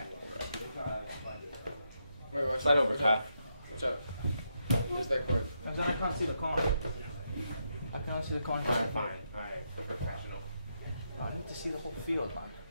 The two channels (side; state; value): both; inverted; correlation -0.82